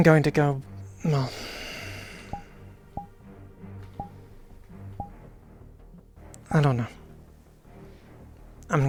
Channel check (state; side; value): identical; both; correlation 1.00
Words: going to go, well, I don't know. I'm